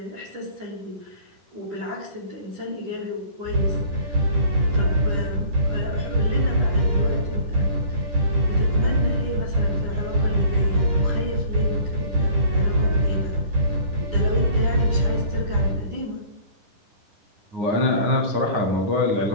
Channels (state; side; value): late; left; 9.9 ms